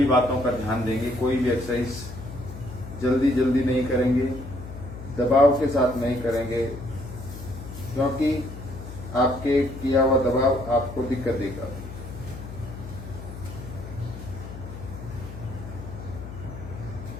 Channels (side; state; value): left; noise; hum, 11 dB below the sound